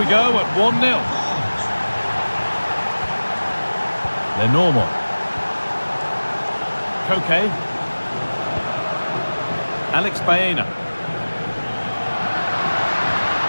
go at 1-0. Lenormand. Koke. Alex Baena.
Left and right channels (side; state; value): both; inverted; correlation -1.00